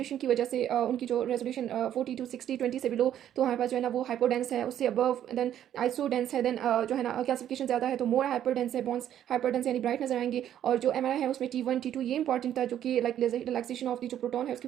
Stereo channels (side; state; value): left; quieter; 10.8 dB